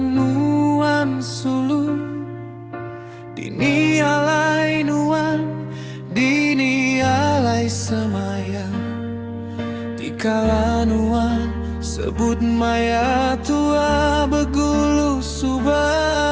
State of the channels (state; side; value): identical; both; correlation 1.00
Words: nuan sulu. Dini alai nuan, dini alai semayang. Dikala nuan sebut maya tua begulu subah.